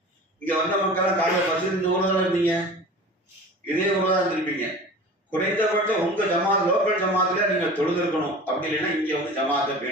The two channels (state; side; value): normal; both; correlation 0.38